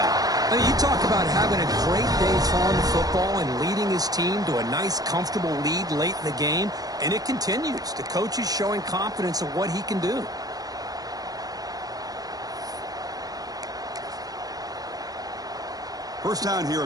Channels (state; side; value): late; left; 0.18 ms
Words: I mean, you talk about having a great day throwing the football and leading his team to a nice, comfortable lead late in the game, and it continues. The coach is showing confidence of what he can do. First down here